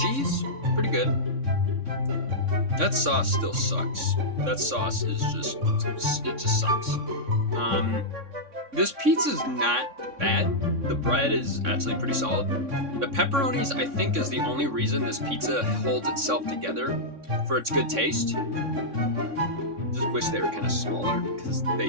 pretty good. That sauce still sucks. That sauce is it just sucks. This pizza's not bad. The bread is actually pretty solid. The pepperonis, I think, is the only reason this pizza holds itself together for its good taste. Just wish they were kind of smaller because they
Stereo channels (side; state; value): left; late; 3.6 ms